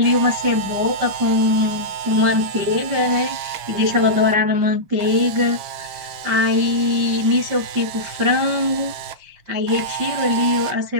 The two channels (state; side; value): late; left; 5.6 ms